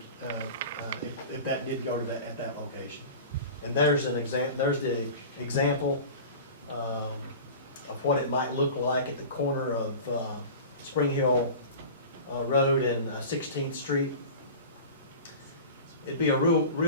if that did go to at that location. And there's the example of what it might look like at the corner of Spring Hill Road and 16th Street. It'd be a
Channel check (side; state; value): both; inverted; correlation -0.36